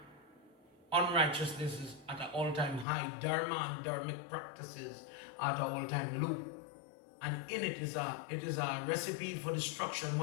Unrighteousness is at an all-time high. Dharma and dharmic practices are at an all-time low. And in it is a recipe for destruction.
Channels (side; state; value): right; drops out; at 2.9 s